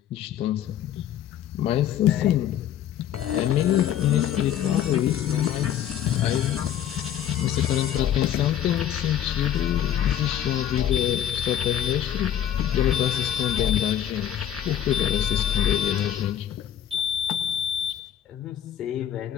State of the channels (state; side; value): quieter; right; 10.5 dB